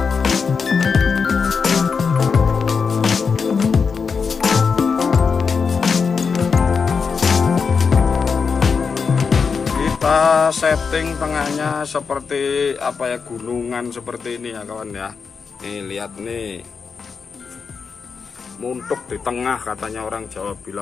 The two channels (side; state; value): right; quieter; 5.5 dB